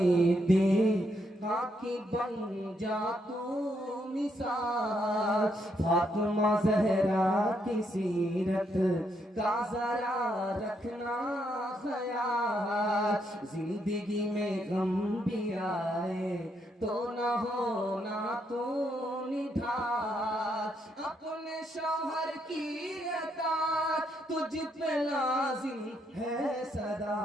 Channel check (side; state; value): both; normal; correlation 0.76